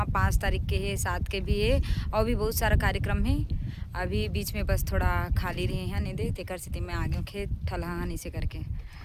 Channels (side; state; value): both; identical; correlation 1.00